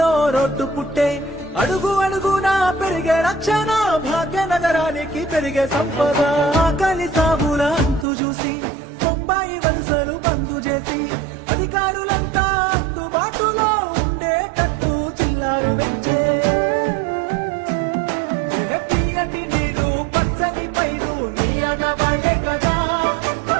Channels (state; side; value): drops out; left; at 8.1 s